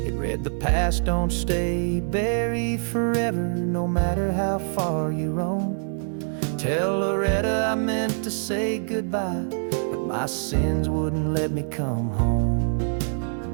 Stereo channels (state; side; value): silent; left; 62 dB below the other